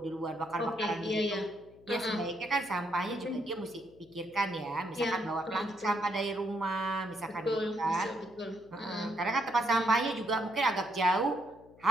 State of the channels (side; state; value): left; noise; hum, 25 dB below the sound